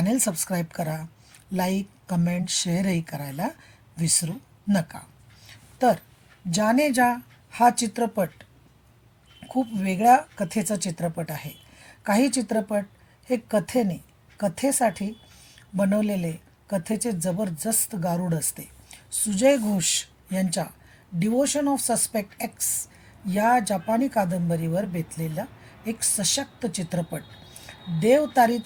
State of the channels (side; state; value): both; identical; correlation 1.00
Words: सबस्क्राईब करा. लाईक, कमेंट, शेअरही करायला विसरू नका. तर जाने जा हा चित्रपट खूप वेगळ्या कथेचा चित्रपट आहे. काही चित्रपट हे कथेसाठी बनवलेले कथेचे जबरदस्त गारुड असते. सुजय घोष यांच्या डिवोशन ऑफ सस्पेक्ट एक्स या जपानी कादंबरीवर बेतलेला एक सशक्त चित्रपट. देव तारी